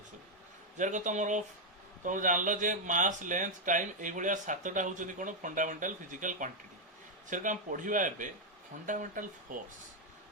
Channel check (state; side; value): normal; both; correlation -0.01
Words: सब जार तुम जानल जे मास लेंथ टाइम ये सातटा होती कौन फंडामेंटल फिजिकल क्वांटिटी से आम पढ़ा एवं फंडामेंटल फोर्स